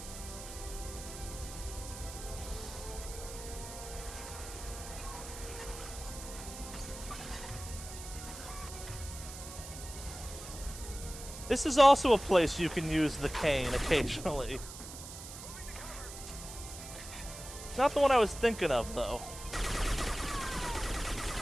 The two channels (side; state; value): right; noise; hiss, 12 dB below the sound